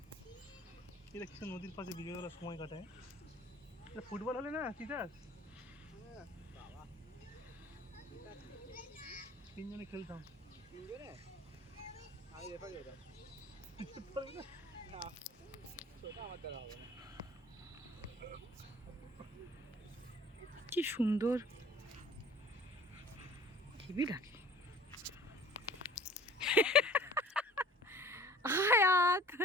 এটা কিছু নদীর পাশে বিকেলবেলা সময় কাটায়। এটা ফুটবল হলে না তিতাস তিনজনে খেলতাম। তিনজনে আমি রেফারি হতাম। না সেটা আমার দ্বারা হবে না। কি সুন্দর হেবি লাগে। আয়াত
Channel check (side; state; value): both; normal; correlation 0.48